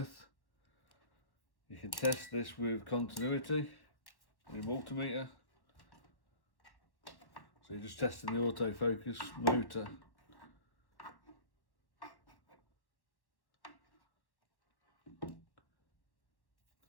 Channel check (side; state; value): right; late; 1.1 ms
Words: You can test this with continuity, your multimeter. So you're just testing the autofocus motor.